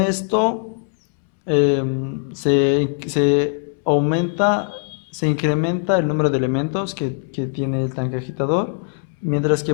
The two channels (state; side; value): silent; right; 65 dB below the other